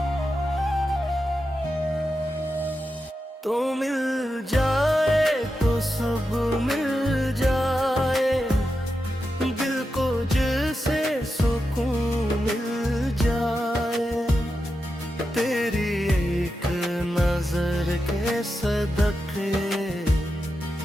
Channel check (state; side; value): normal; both; correlation 0.89